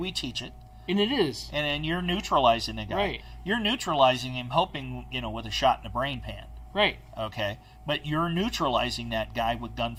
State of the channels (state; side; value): identical; both; correlation 1.00